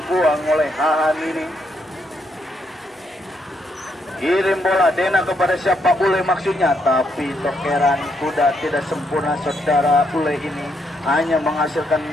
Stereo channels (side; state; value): both; normal; correlation 0.76